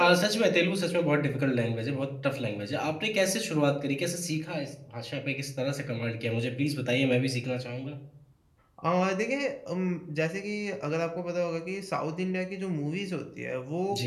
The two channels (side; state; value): both; identical; correlation 1.00